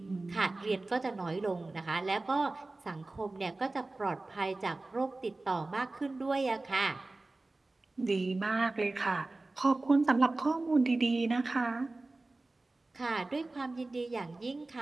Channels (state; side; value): quieter; left; 3.1 dB